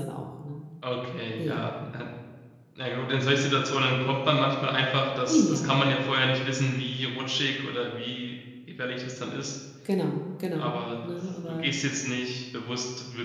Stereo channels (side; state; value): both; identical; correlation 1.00